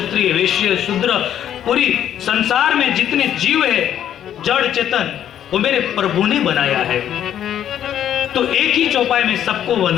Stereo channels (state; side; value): quieter; right; 10.4 dB